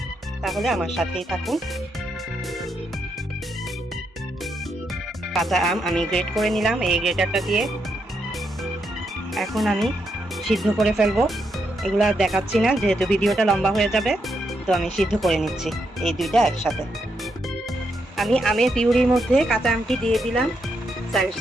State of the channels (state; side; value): normal; both; correlation 0.80